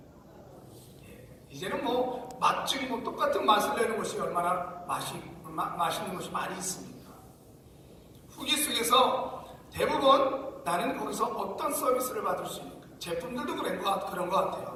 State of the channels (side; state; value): both; identical; correlation 1.00